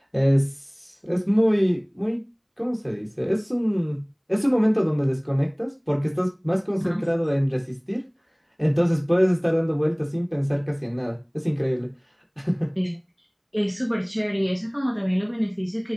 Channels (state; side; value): identical; both; correlation 1.00